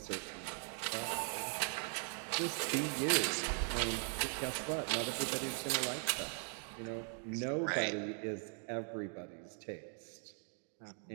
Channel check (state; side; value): silent; left; 51 dB below the other